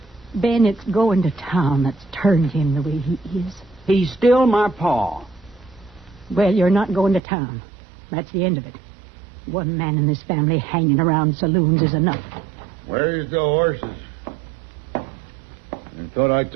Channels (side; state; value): left; drops out; at 7.2 s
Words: it's going to town that's turned him the way he is. He's still my pa. Well, you're not going to town. That's the end of it. One man in this family hanging around saloons is enough. Where's the horses? I thought I